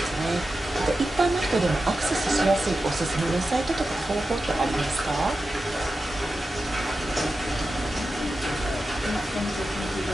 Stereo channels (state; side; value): normal; both; correlation 0.92